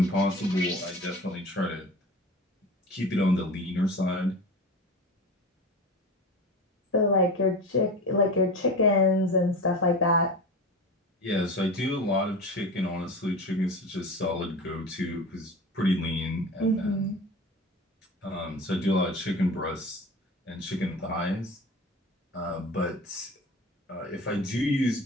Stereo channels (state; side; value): normal; both; correlation 0.32